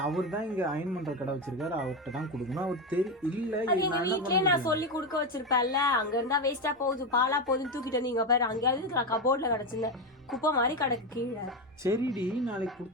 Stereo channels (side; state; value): both; normal; correlation 0.13